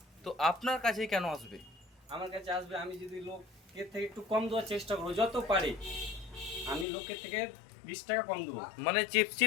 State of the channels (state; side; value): drops out; right; at 6.9 s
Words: তো আপনার কাছেই কেন আসবে? আমার কাছে আসবে, আমি যদি লোকের থেকে একটু কম দেওয়ার চেষ্টা করবো যত পারি। আমি লোকের থেকে 20 টাকা কম দেবো, মানে